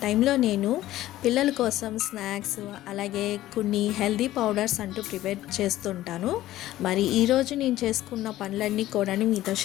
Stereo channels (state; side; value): quieter; right; 14.9 dB